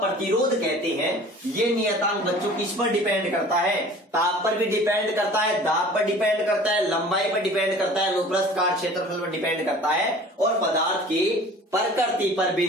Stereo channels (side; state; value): both; normal; correlation 0.45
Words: कहते हैं, ये नियतांक बच्चों किस पर डिपेंड करता है, ताप पर भी डिपेंड करता है, दाब पर डिपेंड करता है, लंबाई पर डिपेंड करता है, अनुप्रस्थ काट क्षेत्रफल पर डिपेंड करता है, और पदार्थ की प्रकृति पर भी